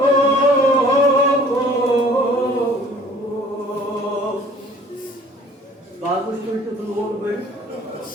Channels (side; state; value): both; normal; correlation 0.52